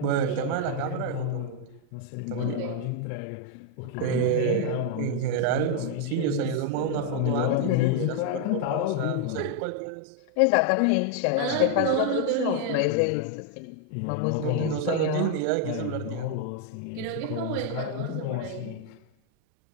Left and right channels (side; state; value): both; different; correlation 0.00